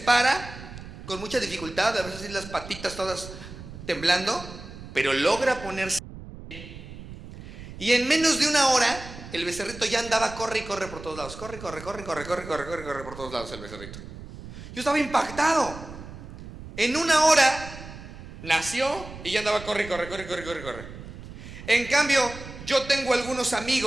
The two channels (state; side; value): noise; right; rumble, 14 dB below the sound